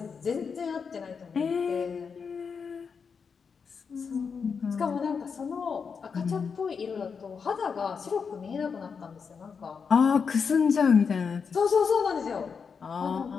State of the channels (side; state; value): right; quieter; 5.9 dB